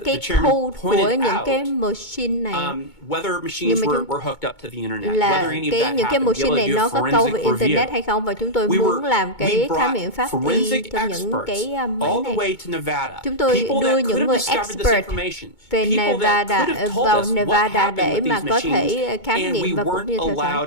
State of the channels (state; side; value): late; right; 2.2 ms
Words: cái code của những cái machine này. Whether machines were hooked up to the internet, là whether any of that những cái machine này nó có câu về internet hay không, và chúng tôi muốn làm cái khám nghiệm pháp y cho những cái máy này. Chúng tôi đưa những người expert về Nevada vào Nevada để mà có thể khám nghiệm và cũng như theo